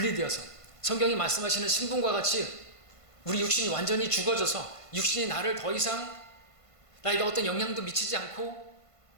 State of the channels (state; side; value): late; right; 1.5 ms